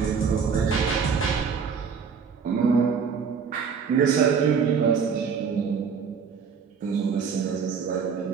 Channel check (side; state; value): left; quieter; 6.2 dB